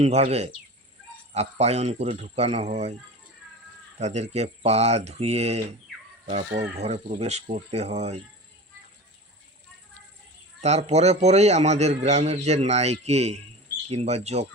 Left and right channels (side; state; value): both; normal; correlation 0.33